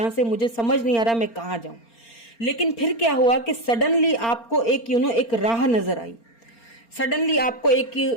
से, मुझे समझ नहीं आ रहा मैं कहाँ जाऊं। लेकिन फिर क्या हुआ कि सडनली आपको एक एक राह नजर आई, सडनली आपको एक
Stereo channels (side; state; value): right; late; 4.3 ms